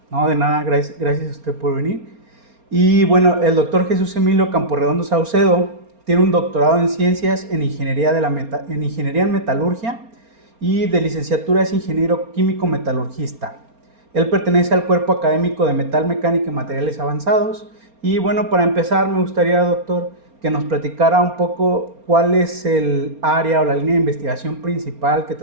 No, de nada, gracias a usted por venir. Y bueno, el doctor Jesús Emilio Camporredondo Saucedo tiene un doctorado en ciencias en ingeniería, en ingeniería en metalurgia y de licenciatura es ingeniero químico metalurgista. Él pertenece al cuerpo académico de metal mecánica y materiales avanzados. Y bueno, para empezar me gustaría, doctor, que nos platicara un poco cuál es el área o la línea de investigación principal que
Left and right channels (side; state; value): left; late; 4.3 ms